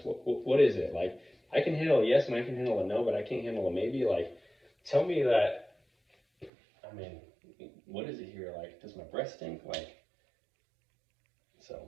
what is it? Like, I can handle a yes and I can handle a no, but I can't handle a maybe. Like, tell me that. I mean, what is it here? Like, does my breath stink? Like,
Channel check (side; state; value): left; drops out; at 6.5 s